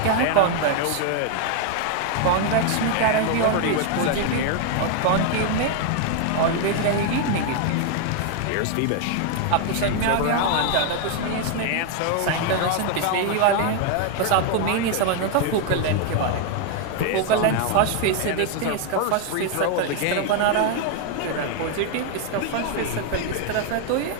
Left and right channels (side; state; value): both; different; correlation 0.00